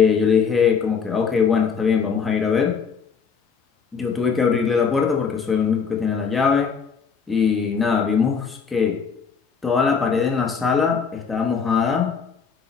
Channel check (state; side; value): quieter; right; 6.0 dB